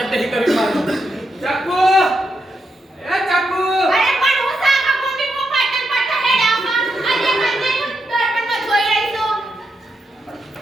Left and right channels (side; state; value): both; normal; correlation 0.84